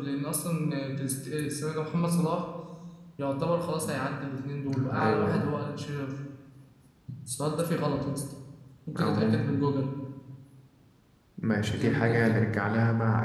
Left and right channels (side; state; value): both; identical; correlation 1.00